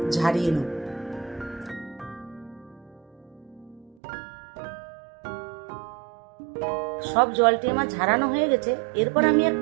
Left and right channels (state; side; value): drops out; left; at 4.0 s